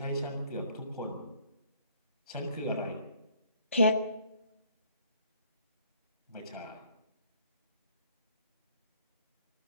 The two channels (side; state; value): both; inverted; correlation -0.61